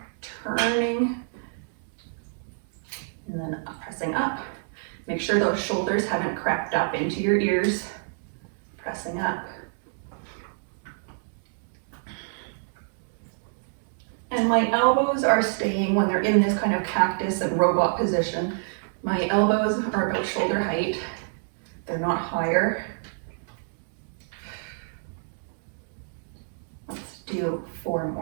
turning, and then pressing up. Make sure those shoulders haven't crept up into your ears, pressing up. And my elbows are staying, when they're in this kind of cactus and robot position, my elbows are about shoulder height. They're not higher. Let's do 4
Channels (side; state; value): left; silent; digital silence